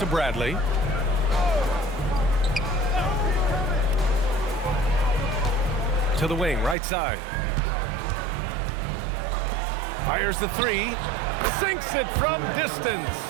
Bradley. To the wing, right side. Fires the three. Sinks it from distance.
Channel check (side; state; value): left; drops out; at 6.8 s